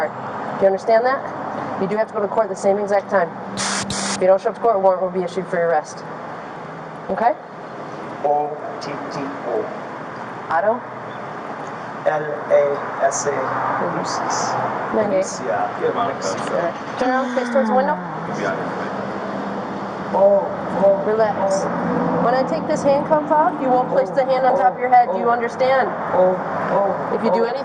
Do you understand that? You do have to go to court at the same exact time. If you don't show up to court, a warrant will be issued for your arrest. Okay? O-T-T-O. Otto? L-A-S-A. Lucis. Alicia. Turn around, face towards the window. Relax. When I take this handcuff off, you won't place the hand on top of your head. Do you understand? If you do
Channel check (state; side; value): identical; both; correlation 1.00